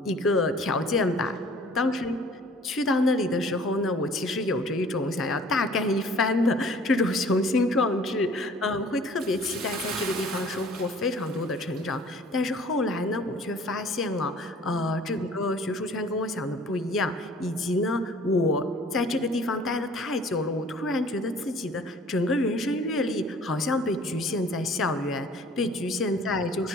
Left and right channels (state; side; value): normal; both; correlation 0.51